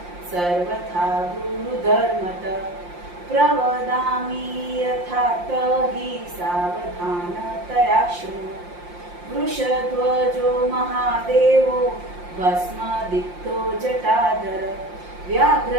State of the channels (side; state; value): left; late; 5.7 ms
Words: सर्वथा गुरुधर्मत प्रवदामि यथा हि सावधानतया शृणु। वृषध्वजो महादेवो भस्मदिक्तो जटाधर